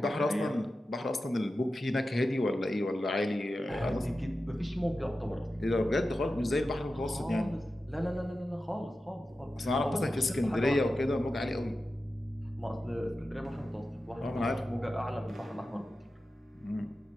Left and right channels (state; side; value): normal; both; correlation 0.93